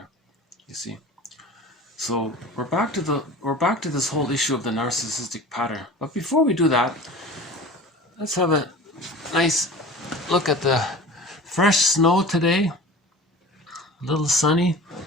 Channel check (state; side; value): normal; both; correlation 0.38